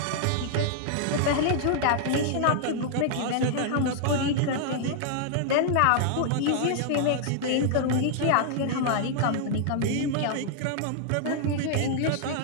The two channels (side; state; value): both; different; correlation -0.01